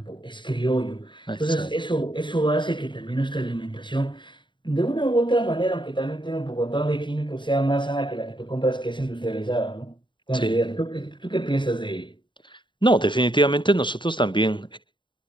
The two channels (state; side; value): late; right; 0.23 ms